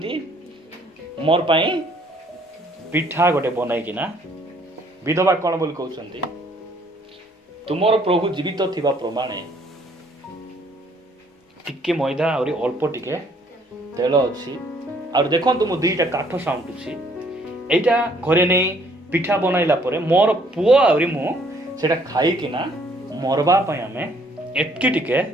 ମୋର ପାଇଁ ପିଠା ଗୋଟେ ବନାଇକିନା। ବିଧବା କ'ଣ ବୋଲି କହୁଛନ୍ତି? ତୁମର ପ୍ରଭୁ ଜୀବିତ ଥିବା ପ୍ରମାଣେ ଟିକେ ମଇଦା ଆହୁରି ଅଳ୍ପ ଟିକେ ତେଲ ଅଛି, ଆଉ ଦେଖନ୍ତୁ ମୁଁ 2ଟା କାଠ ସାଉଁଟୁଛି, ଏଇଟା ଘରେ ନେଇ ପିଠା ବନାଇଲା ପରେ ମୋର ପୁଅ ଆହୁରି ମୁଁ ସେଟା ଖାଇକିନା ମରବା ପାଇଁ ଆମେ ଏତିକି ଟିକେ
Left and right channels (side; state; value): both; normal; correlation 0.63